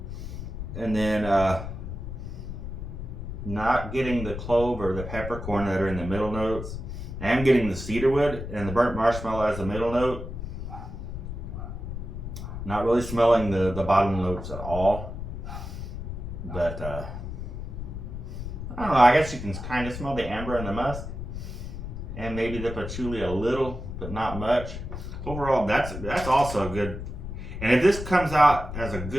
And then not getting the clove or the peppercorn that are in the middle notes. I am getting the cedarwood and the burnt marshmallow as a middle note. Not really smelling the bottom notes at all, but I don't know, I guess you can kind of smell the amber and the musk, and maybe the patchouli a little, but not much. Overall, that's also good. And if this comes out as a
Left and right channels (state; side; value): noise; left; rumble, 7 dB below the sound